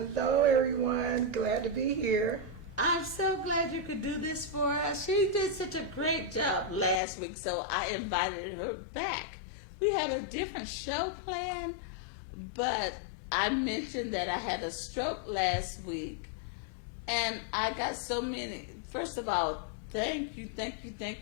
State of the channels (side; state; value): right; drops out; at 7.0 s